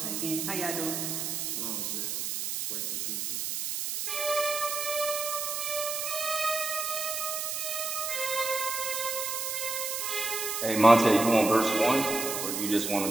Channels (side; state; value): right; noise; hiss, 2 dB below the sound